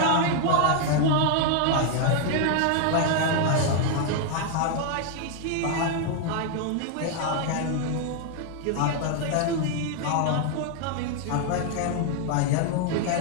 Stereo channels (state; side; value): different; both; correlation 0.00